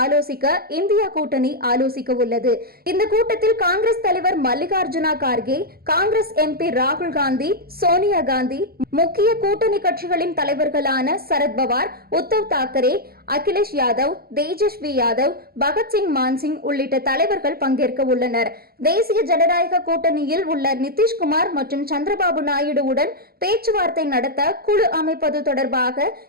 ஆலோசிக்க இந்தியா கூட்டணி ஆலோசிக்க உள்ளது. இந்த கூட்டத்தில் காங்கிரஸ் தலைவர் மல்லிகார்ஜுனா கார்கே, காங்கிரஸ் எம்பி ராகுல் காந்தி, சோனியா காந்தி, முக்கிய கூட்டணி கட்சிகளின் தலைவர்களான சரத்பவார், உத்தவ் தாக்கரே, அகிலேஷ் யாதவ், தேஜஸ்வி யாதவ், பகத்சிங் மான்சிங் உள்ளிட்ட தலைவர்கள் பங்கேற்க உள்ளனர். தேசிய ஜனநாயக கூட்டணியில் உள்ள நிதிஷ்குமார் மற்றும் சந்திரபாபு நாயுடுவுடன் பேச்சுவார்த்தை நடத்த குழு அமைப்பது தொடர்பாக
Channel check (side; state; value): left; late; 0.44 ms